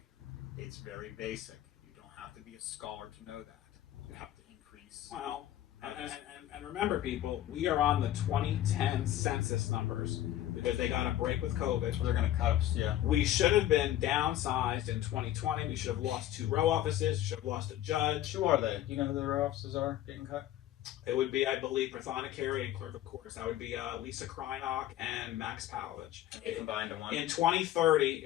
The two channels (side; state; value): right; quieter; 13.0 dB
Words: It's very basic. You don't have to be a scholar to know that. You have to increase. well, and remember, people, we are on the 2010 census numbers because they got a break with COVID. They're going to cut us, yeah. We should have been downsized in 2020. We should have lost 2 row offices. We should have lost a judge. Who are they? Do you know who the row offices are getting cut? It would be, I believe, Prathana and Clerk of Courts. That would be Lisa Krynock and Max Palovich. They combined to one. In 2030,